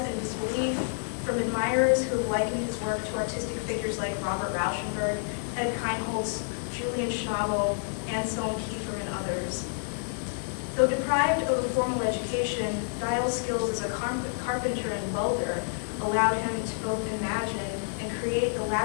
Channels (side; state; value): right; silent; digital silence